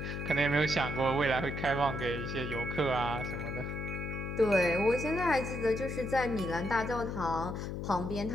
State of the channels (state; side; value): noise; left; hum, 4 dB below the sound